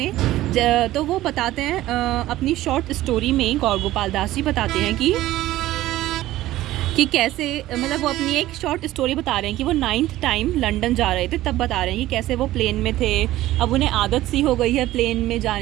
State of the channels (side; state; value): left; quieter; 15.5 dB